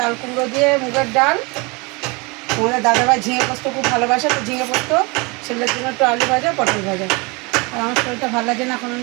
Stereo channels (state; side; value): quieter; left; 27.9 dB